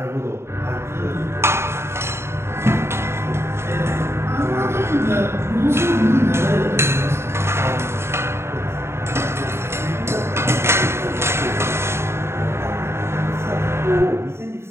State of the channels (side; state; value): left; late; 0.12 ms